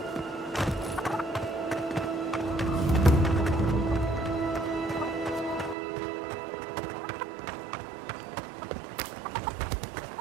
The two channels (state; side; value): drops out; left; at 5.8 s